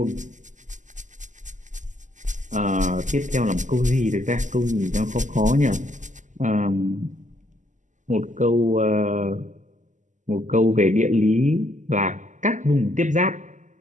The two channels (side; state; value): left; late; 0.36 ms